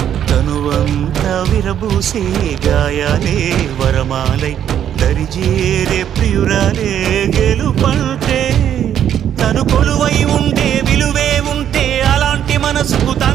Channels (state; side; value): quieter; left; 9.8 dB